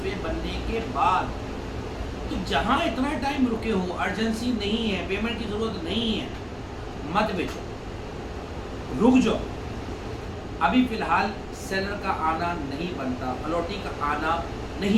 बनने के बाद। तो जहाँ इतना टाइम रुके हो, अर्जेंसी नहीं है, पेमेंट की ज़रूरत नहीं है, मत बेचो, रुक जाओ। अभी फ़िलहाल सेलर का आना नहीं बनता, अलॉटी का आना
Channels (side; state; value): both; identical; correlation 1.00